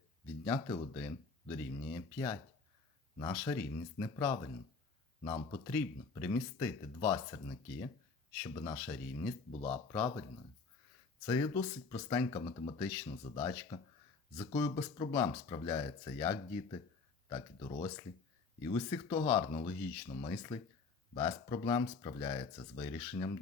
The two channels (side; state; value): right; quieter; 4.5 dB